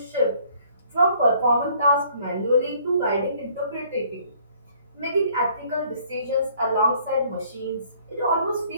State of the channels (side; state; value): both; inverted; correlation -0.60